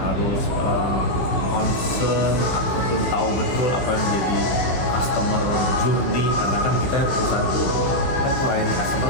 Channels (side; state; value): right; late; 15 ms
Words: harus concern ataupun tahu betul apa yang menjadi customer journey, karena kan kita perusahaan itu kan melayani customer